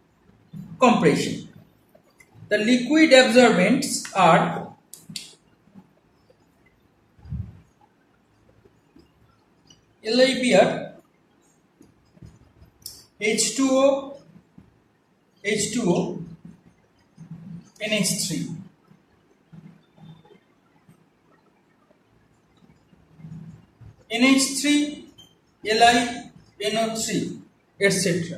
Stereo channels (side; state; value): both; identical; correlation 1.00